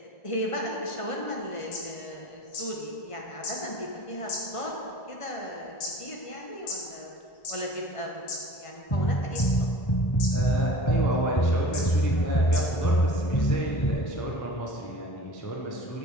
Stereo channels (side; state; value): right; late; 1.5 ms